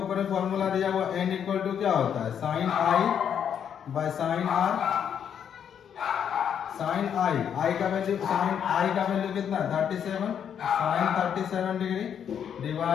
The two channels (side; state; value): right; quieter; 8.4 dB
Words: में फॉर्मूला दिया हुआ n इक्वल टू क्या होता है, sine I by sine R. Sine I का वैल्यू, साइन आई का वैल्यू कितना है 37, sine 37 degree